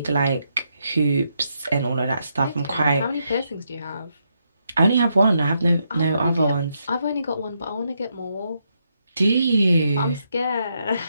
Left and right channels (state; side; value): inverted; both; correlation -0.80